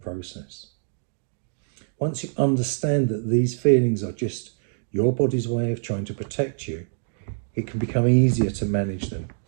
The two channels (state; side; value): silent; left; digital silence